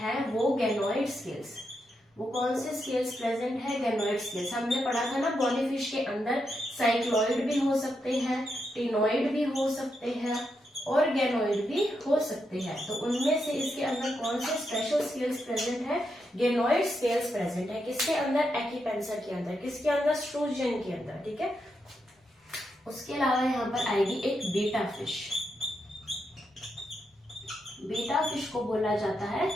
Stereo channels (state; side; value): normal; both; correlation 0.83